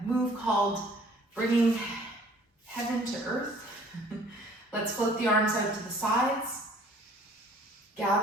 move called bringing heaven to earth. Let's float the arms out to the sides.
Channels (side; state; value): both; normal; correlation 0.54